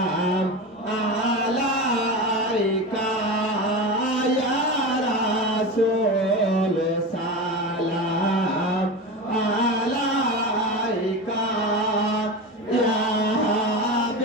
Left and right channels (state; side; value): normal; both; correlation 0.24